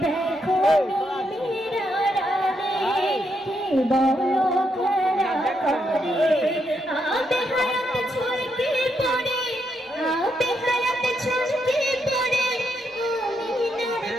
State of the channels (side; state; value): both; normal; correlation 0.79